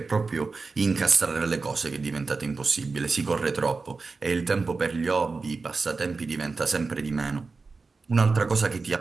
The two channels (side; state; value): left; quieter; 4.2 dB